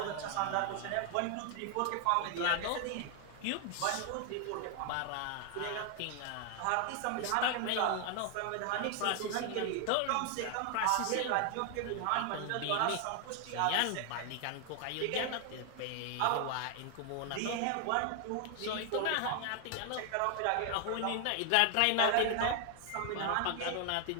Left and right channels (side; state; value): both; different; correlation 0.00